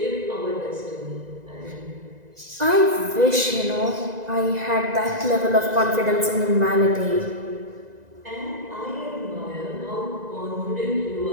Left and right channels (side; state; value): left; late; 2.0 ms